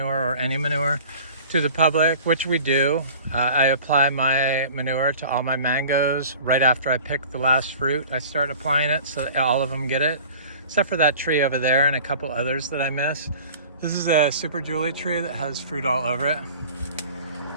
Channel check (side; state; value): both; inverted; correlation -0.43